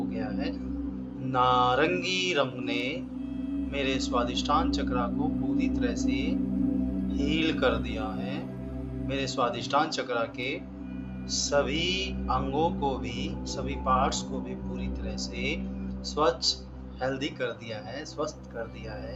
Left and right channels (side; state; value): both; identical; correlation 1.00